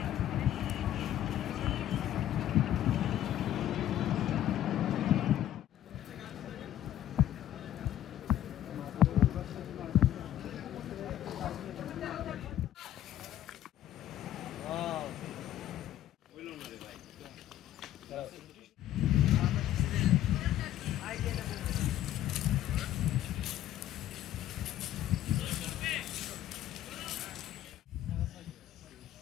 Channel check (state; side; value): quieter; right; 12.3 dB